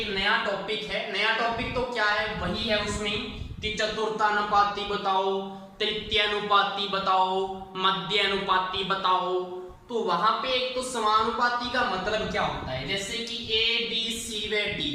नया टॉपिक है। नया टॉपिक तो क्या है, वही है उसमें कि चतुर्थानुपाती बताओ, तृतीयानुपाती बताओ, मध्यानुपाती बताओ। तो वहां पे एक तो समानुपाती का मतलब क्या होता है, जैसे कि a b c व d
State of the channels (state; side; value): identical; both; correlation 1.00